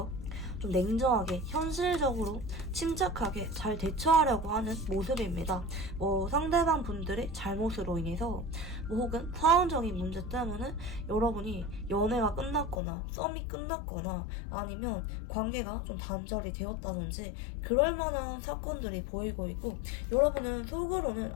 좀 냉정하게 현실적으로 침착하게 잘 대처하려고 하는 모습입니다. 뭐 상대방 분들의 잘못으로 인해서 뭐 혹은 상황적인 문제 때문에 여러분이 연애가 끝났거나 썸이 끝났거나 아니면 관계가 좀 단절이 되었다든지 그럴 만한 사건들이 보이고 있고, 여러분은 속으로는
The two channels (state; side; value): drops out; right; at 12.8 s